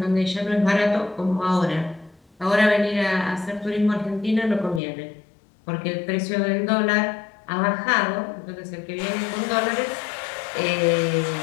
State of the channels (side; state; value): right; drops out; at 4.8 s